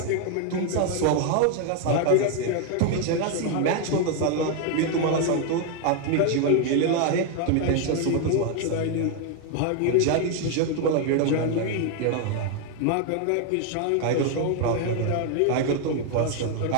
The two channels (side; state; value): both; different; correlation 0.01